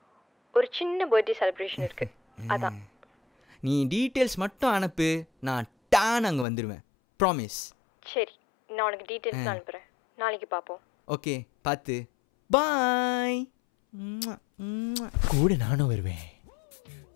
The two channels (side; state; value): right; drops out; at 6.5 s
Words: ஒரு சின்ன பர்த்டே செலிப்ரேஷன் இருக்கு, அதான். நீ டீட்டெயில்ஸ் மட்டும் அனுப்பு, நான் டான் அங்கே வந்துடுவேன். ப்ராமிஸ். சரி, நான் உனக்கு டீட்டெயில்ஸ் அனுப்புகிறேன். நாளைக்கு பார்ப்போம். ஓகே, பார்த்து. பாய். கூட நானும் வருவேன்.